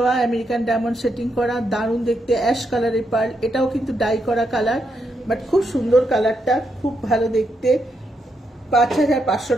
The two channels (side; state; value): both; normal; correlation 0.81